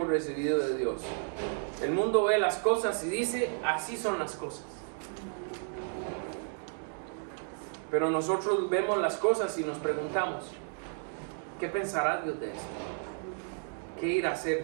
recibido de Dios. El mundo ve las cosas y dice, así son las cosas. Pero nosotros vemos las cosas y nos preguntamos, ¿qué pensará Dios de esto? ¿Qué irá a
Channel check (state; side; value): silent; left; 56 dB below the other